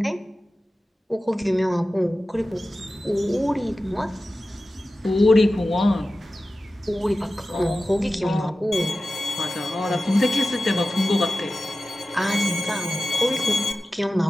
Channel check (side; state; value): both; normal; correlation 0.95